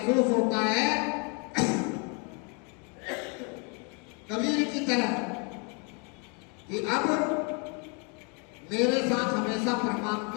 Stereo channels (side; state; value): right; quieter; 35.4 dB